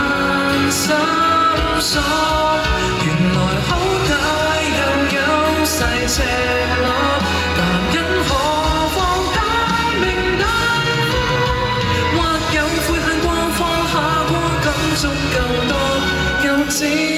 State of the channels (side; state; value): both; identical; correlation 1.00